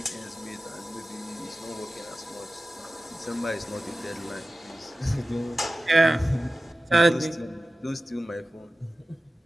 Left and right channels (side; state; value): both; normal; correlation 0.95